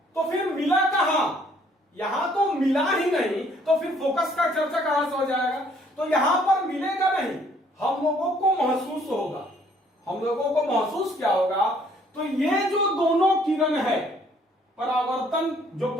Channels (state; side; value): normal; both; correlation 0.62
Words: तो फिर मिला कहां? यहां तो मिला ही नहीं, तो फिर फोकस का चर्चा कहां से हो जाएगा? तो यहां पर मिलेगा नहीं, हम लोगों को महसूस होगा। हम लोगों को महसूस क्या होगा? तो ये जो दोनों किरण है, परावर्तन, जो